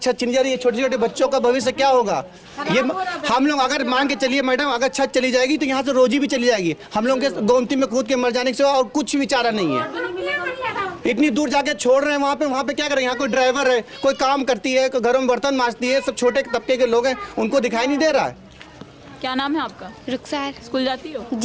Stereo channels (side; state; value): both; identical; correlation 1.00